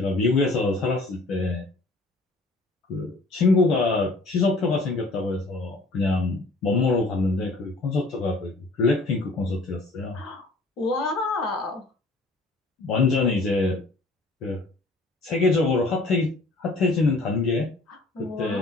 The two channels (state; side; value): quieter; right; 3.1 dB